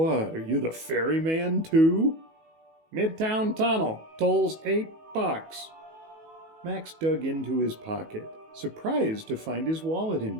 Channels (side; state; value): left; late; 19 ms